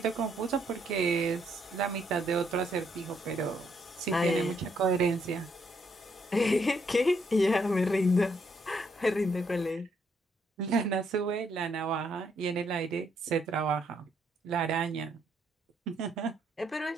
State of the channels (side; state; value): both; normal; correlation 0.73